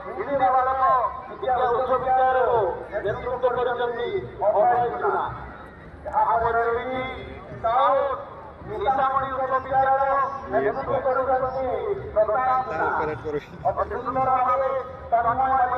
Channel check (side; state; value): both; identical; correlation 1.00